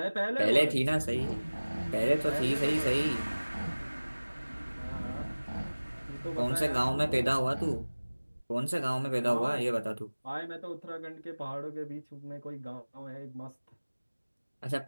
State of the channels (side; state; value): both; inverted; correlation -1.00